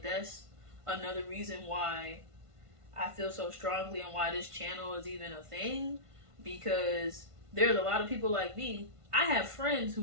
that's another reason why I feel so strongly and why this channel is even a thing. Because there's a lot of people like me. I have friends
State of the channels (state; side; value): late; left; 1.5 ms